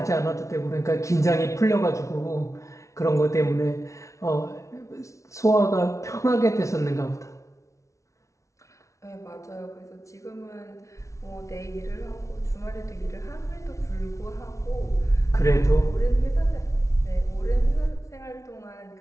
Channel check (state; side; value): late; right; 0.14 ms